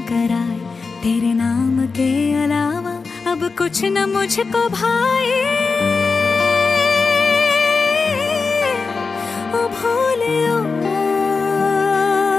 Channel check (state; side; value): quieter; right; 4.5 dB